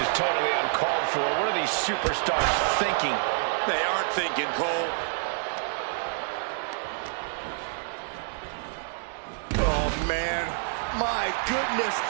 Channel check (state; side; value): silent; left; digital silence